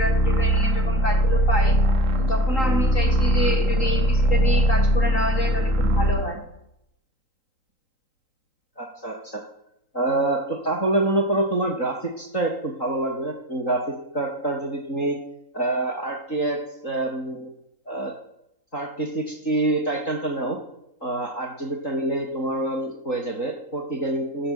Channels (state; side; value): late; right; 3.8 ms